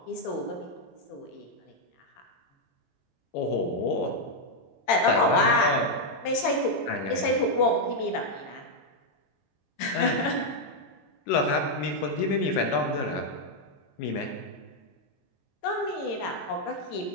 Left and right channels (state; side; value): late; right; 22 ms